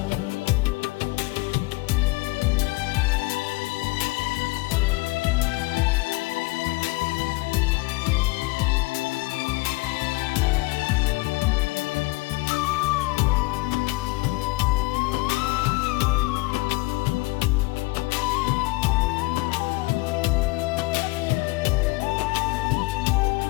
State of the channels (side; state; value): right; quieter; 23.3 dB